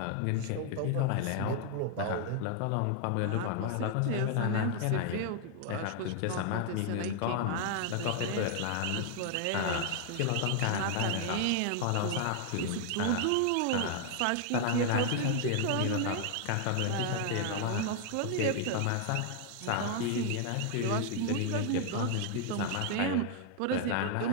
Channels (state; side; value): different; both; correlation 0.00